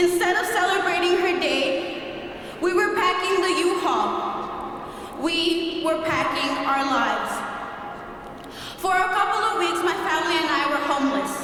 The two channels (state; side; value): identical; both; correlation 1.00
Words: of celebrating her day, we were packing the U-Haul. We were packing our lives. For a couple of weeks, my family and I were homeless.